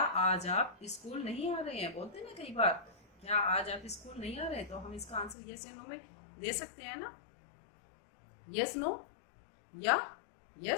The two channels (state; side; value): drops out; right; at 5.4 s